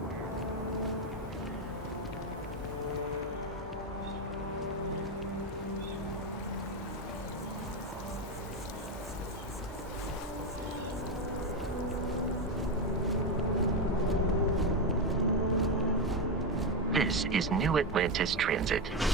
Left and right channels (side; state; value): both; normal; correlation 0.10